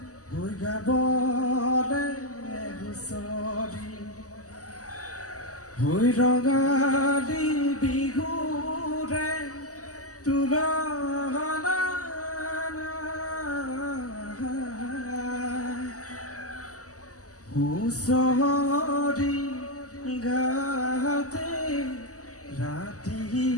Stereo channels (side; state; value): right; late; 0.66 ms